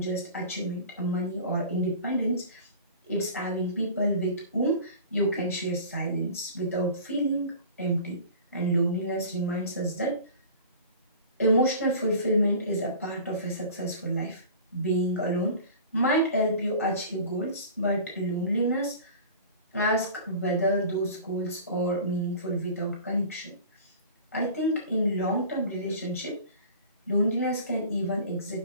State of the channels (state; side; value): inverted; both; correlation -0.40